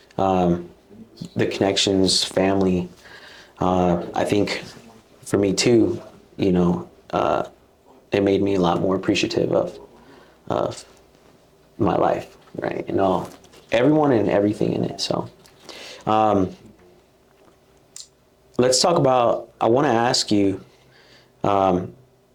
the connections, family. I think for me too, it made me a lot more appreciative of my life, right? And everyone and everything in it. So let's talk about, I want to ask you,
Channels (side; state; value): both; identical; correlation 1.00